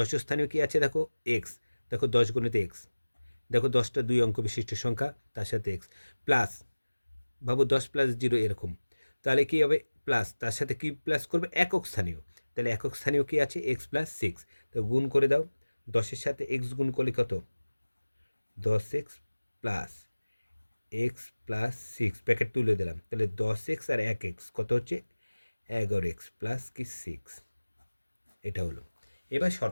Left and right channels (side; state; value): both; inverted; correlation -1.00